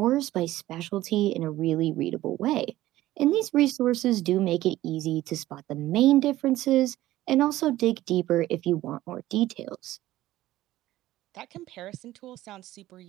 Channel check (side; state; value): left; quieter; 15.5 dB